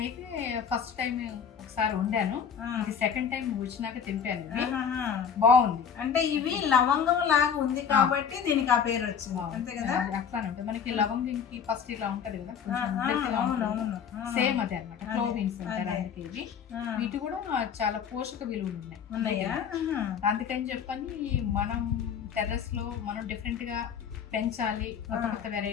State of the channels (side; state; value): right; quieter; 7.3 dB